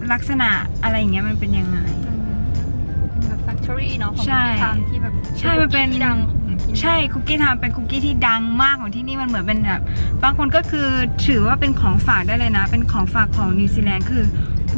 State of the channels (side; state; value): both; inverted; correlation -1.00